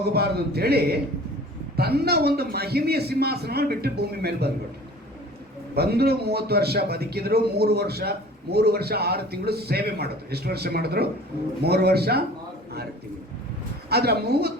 ಅಂತೇಳಿ ತನ್ನ ಒಂದು ಮಹಿಮೆಯ ಸಿಂಹಾಸನವನ್ನು ಬಿಟ್ಟು ಭೂಮಿ ಮೇಲೆ ಬಂದ್ಬಿಟ್ಟು ಬಂದರು. 30 ವರ್ಷ ಬದುಕಿದ್ರು. 3 ವರ್ಷ 6 ತಿಂಗಳು ಸೇವೆ ಮಾಡಿದ್ರು. ಎಷ್ಟು ವರ್ಷ ಮಾಡಿದ್ರು? 3 ವರ್ಷ 6 ತಿಂಗಳು. ಆದರೆ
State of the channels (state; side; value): normal; both; correlation 0.45